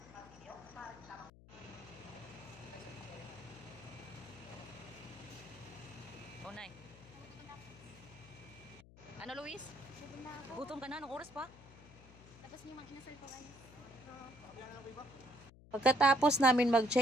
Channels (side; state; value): left; noise; hum, 20 dB below the sound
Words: Oh, Nay. Ano, Luis? Gutom ka na? Anong oras pa? Tapos niyo mag-inasal ko ano. Pagkatapos namin